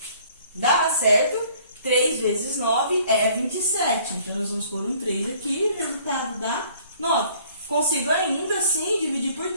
Dá, certo? 3 vezes 9 é 27. Então, nós vamos pôr um 3 aqui e o resultado dá 9. Consigo ainda assim dividir por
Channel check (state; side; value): inverted; both; correlation -0.56